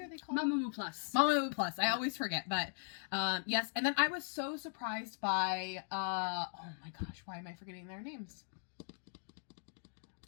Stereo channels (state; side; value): silent; right; digital silence